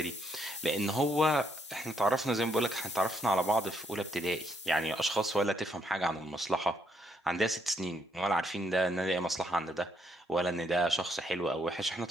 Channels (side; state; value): both; normal; correlation 0.74